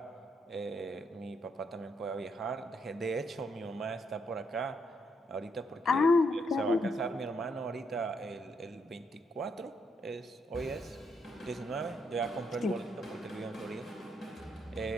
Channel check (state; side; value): normal; both; correlation 0.76